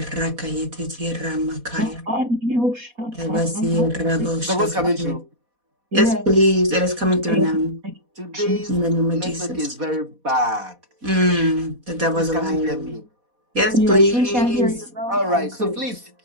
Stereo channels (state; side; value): late; left; 4.1 ms